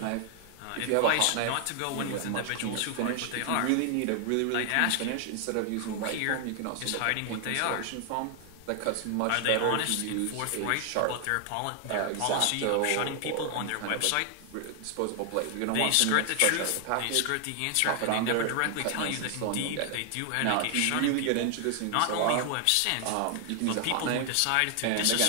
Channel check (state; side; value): different; both; correlation 0.00